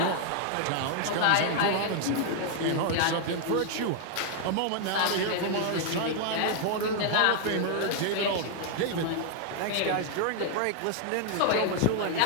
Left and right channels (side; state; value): both; different; correlation 0.00